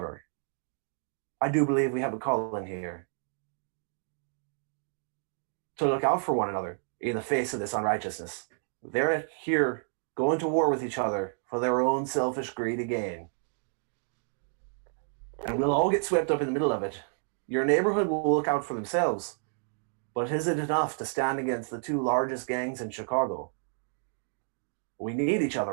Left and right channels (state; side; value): silent; left; digital silence